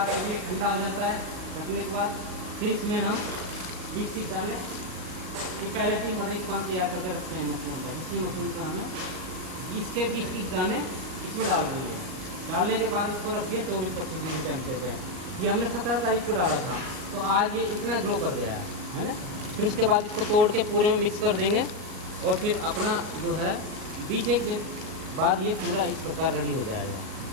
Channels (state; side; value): late; left; 38 ms